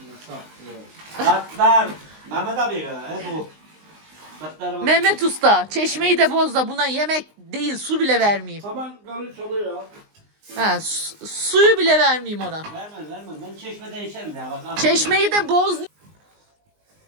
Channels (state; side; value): late; left; 19 ms